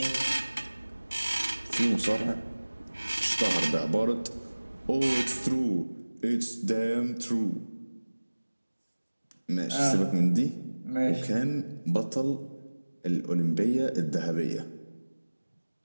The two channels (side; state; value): both; inverted; correlation -1.00